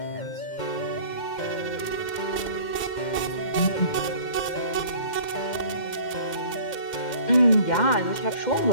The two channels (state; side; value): late; right; 2.1 ms